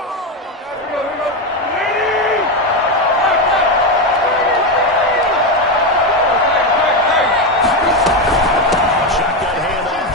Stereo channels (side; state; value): both; normal; correlation 0.11